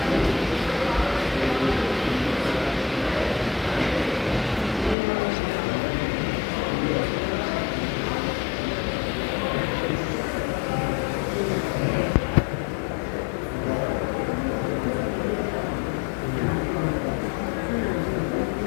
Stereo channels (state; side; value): drops out; right; at 5.0 s